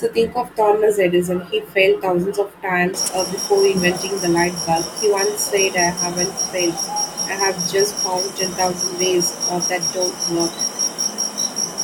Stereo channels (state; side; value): identical; both; correlation 1.00